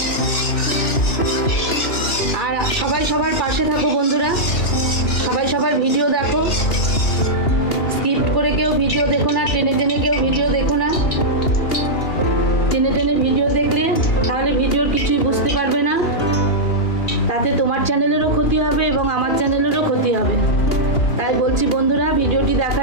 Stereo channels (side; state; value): right; late; 2.8 ms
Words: আর সবাই সবার পাশে থাকো বন্ধুরা, সবাই সবার ভিডিও দেখো, স্কিপ করে কেউ ভিডিও দেখো না, টেনে টেনে কেউ ভিডিও দেখো না। টেনে টেনে ভিডিও দেখলে তাহলে ভিডিওর কিছুই বুঝতে পারবে না, তাতে তোমার চ্যানেলেরও ক্ষতি হবে এবং আমার চ্যানেলেরও ক্ষতি হবে। তাই বলছি বন্ধুরা, ভিডিওটি